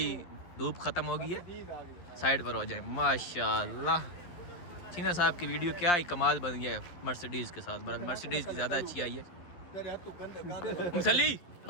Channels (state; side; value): late; right; 11 ms